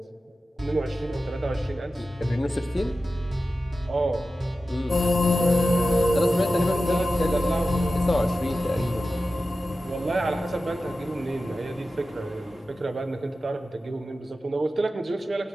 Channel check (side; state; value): both; normal; correlation 0.94